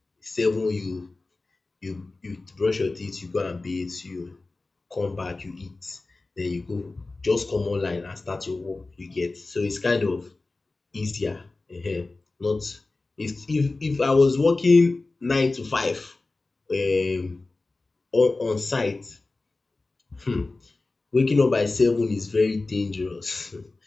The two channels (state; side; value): quieter; right; 3.4 dB